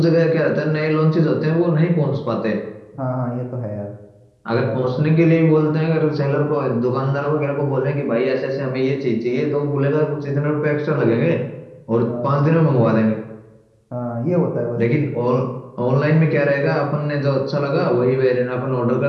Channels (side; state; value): both; identical; correlation 1.00